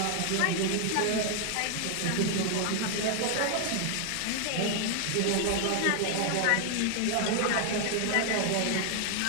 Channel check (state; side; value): different; both; correlation 0.00